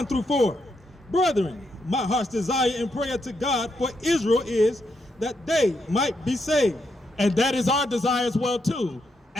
through 4. Brethren, my heart's desire and prayer to God for Israel is that they might be saved. And that is our desire as well too.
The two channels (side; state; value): both; normal; correlation 0.80